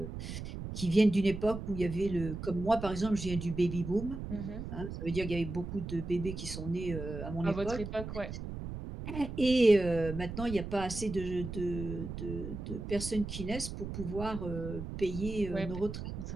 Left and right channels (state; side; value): noise; right; rumble, 7 dB below the sound